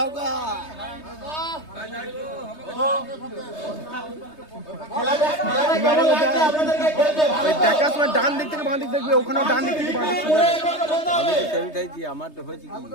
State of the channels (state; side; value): late; right; 3.2 ms